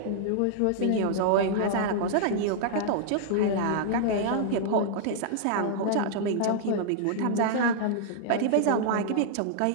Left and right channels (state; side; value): different; both; correlation -0.01